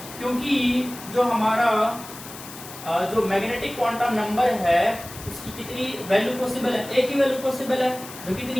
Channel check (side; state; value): left; noise; hiss, 14 dB below the sound